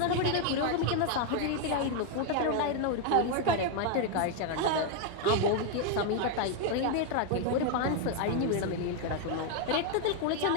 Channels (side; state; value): both; different; correlation 0.01